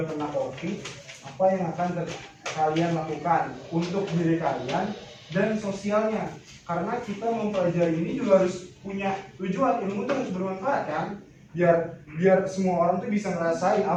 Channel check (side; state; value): both; identical; correlation 1.00